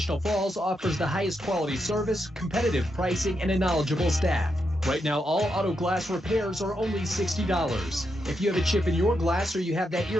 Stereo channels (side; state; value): both; normal; correlation 0.83